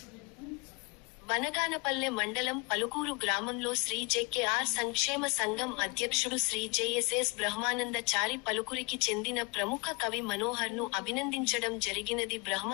బనగానపల్లె మండలం పలుకూరు గ్రామంలో శ్రీ జె.కె.ఆర్. సంక్షేమ సంఘం అధ్యక్షుడు శ్రీ జె.ఎస్.ఎస్. బ్రహ్మానందచారి పలుకురికి చెందిన ప్రముఖ కవి మనోహర్ను అభినందించడం జరిగినది.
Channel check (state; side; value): quieter; right; 29.9 dB